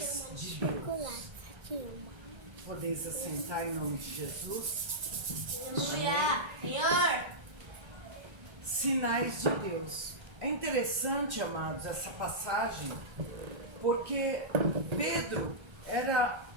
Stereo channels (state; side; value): late; left; 1.3 ms